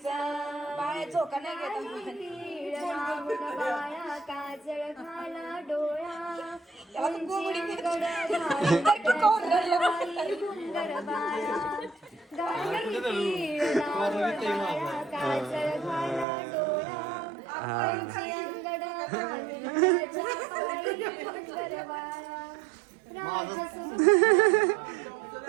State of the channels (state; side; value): drops out; left; at 16.2 s